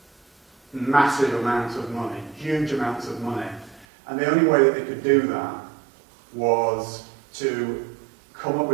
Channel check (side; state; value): left; drops out; at 3.9 s